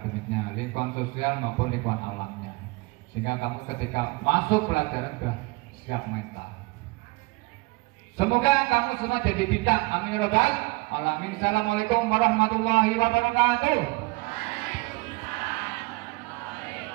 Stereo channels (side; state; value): left; quieter; 24.7 dB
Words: lingkungan sosial maupun lingkungan alamnya, sehingga kamu ketika masuk pelajaran sudah siap mental. Semoga kamu semua jadi bijak. Amin ya rabbal alamin. Assalamualaikum warahmatullahi wabarakatuh.